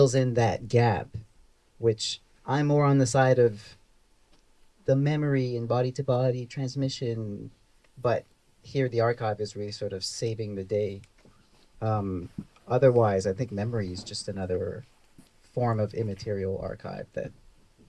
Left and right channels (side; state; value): both; identical; correlation 1.00